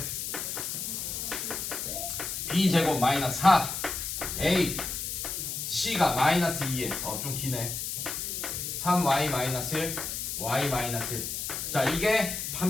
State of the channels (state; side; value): noise; left; hiss, 4 dB below the sound